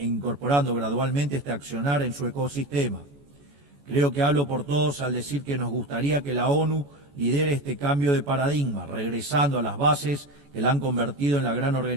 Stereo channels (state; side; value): late; left; 14 ms